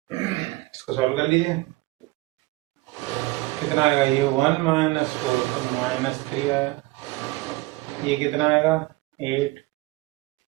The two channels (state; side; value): quieter; left; 21.0 dB